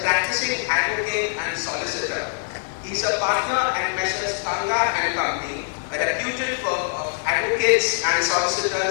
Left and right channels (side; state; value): right; silent; 63 dB below the other